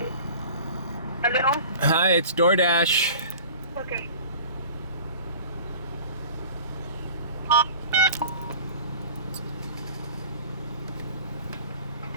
Hello? Hi, it's DoorDash. Okay.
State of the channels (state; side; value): inverted; both; correlation -0.41